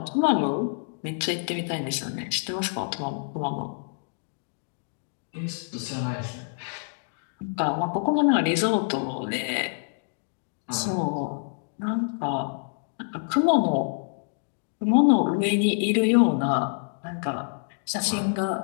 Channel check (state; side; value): silent; right; digital silence